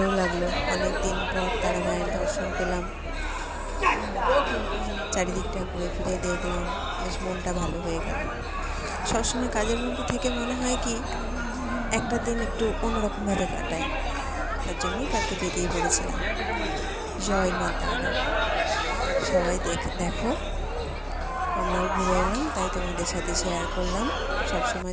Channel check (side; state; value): both; identical; correlation 1.00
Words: লাগলো, অনেক দিন পর তারা মায়ের দর্শন পেলাম। চারিদিকটা ঘুরে ফিরে দেখলাম, বেশ মনটা ভালো হয়ে গেল। সবসময় কাজের মধ্যে থেকে মনে হয় কি একটা দিন একটু অন্যরকমভাবে কাটাই। তার জন্যই কালকে বেরিয়ে পড়েছিলাম। জয় মা তারা। সবাই দেখো, আমরাও ঘুরে এলাম, তাই তোমাদের সাথে শেয়ার করলাম। সব সময়